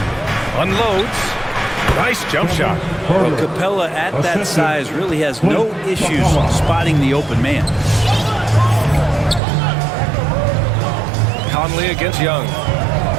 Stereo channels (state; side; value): drops out; left; at 9.4 s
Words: Unloads. Nice jump shot. Well, Capella at that size really has no issues spotting the open man. Conley against Young.